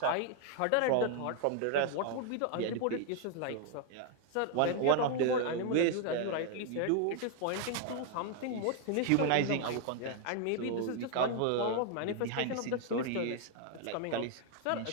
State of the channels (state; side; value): different; both; correlation 0.00